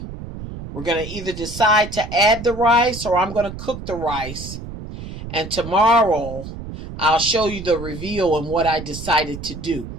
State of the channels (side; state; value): right; noise; rumble, 10 dB below the sound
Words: we're going to either decide to add the rice or I'm going to cook the rice. And tomorrow, I'll show you the reveal and what I decided to do.